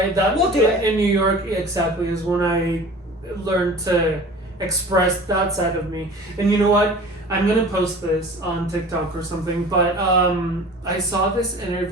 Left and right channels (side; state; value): both; normal; correlation 0.42